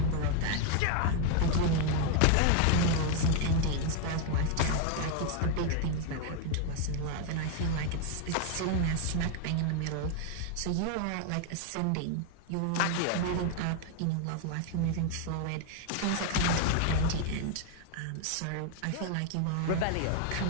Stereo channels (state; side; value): different; both; correlation 0.01